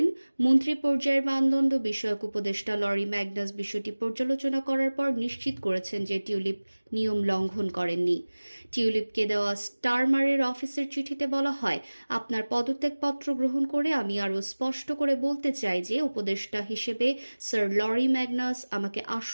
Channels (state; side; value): inverted; both; correlation -1.00